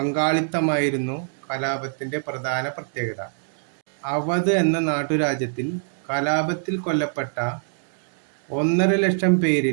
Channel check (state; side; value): silent; left; digital silence